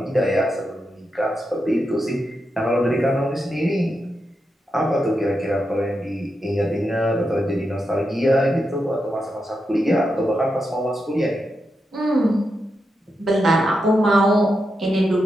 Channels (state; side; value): normal; both; correlation 0.86